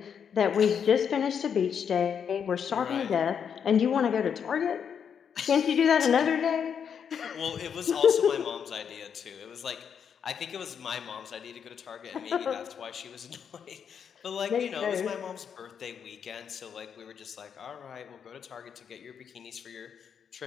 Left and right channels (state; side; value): quieter; right; 7.5 dB